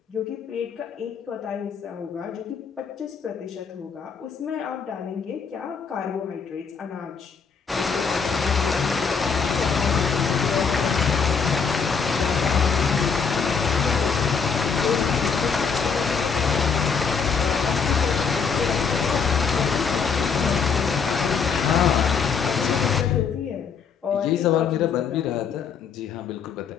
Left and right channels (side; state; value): right; quieter; 6.0 dB